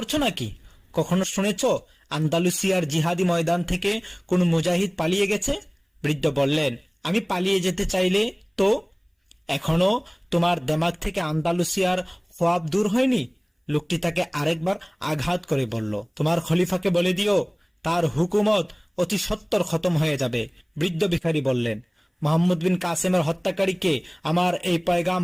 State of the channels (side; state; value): both; identical; correlation 1.00